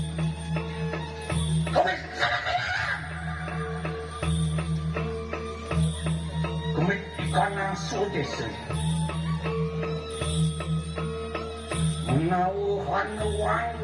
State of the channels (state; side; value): identical; both; correlation 1.00